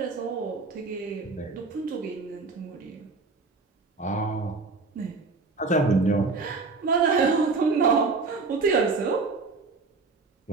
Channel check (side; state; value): left; quieter; 4.0 dB